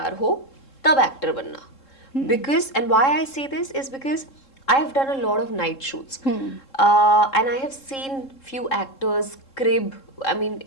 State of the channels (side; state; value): right; late; 3.7 ms